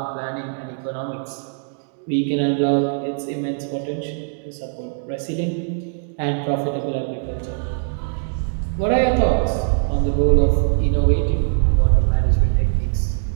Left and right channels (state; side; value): silent; left; digital silence